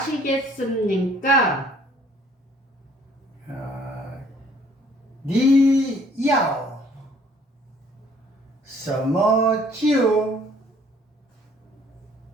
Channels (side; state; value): both; normal; correlation 0.59